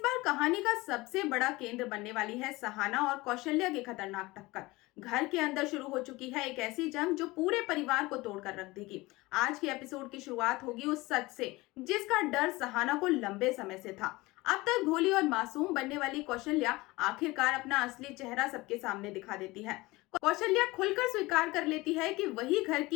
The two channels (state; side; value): quieter; right; 21.3 dB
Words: बार कहानी का सबसे बड़ा केंद्र बनने वाली है सहाना और कौशल्या की खतरनाक टक्कर। घर के अंदर शुरू हो चुकी है एक ऐसी जंग जो पूरे परिवार को तोड़कर रख देगी। आज के एपिसोड की शुरुआत होगी उस सच से जिसका डर सहाना को लंबे समय से था। अब तक भोली और मासूम बनने वाली कौशल्या आखिरकार अपना असली चेहरा सबके सामने दिखा देती है। कौशल्या खुलकर स्वीकार कर लेती है कि वही घर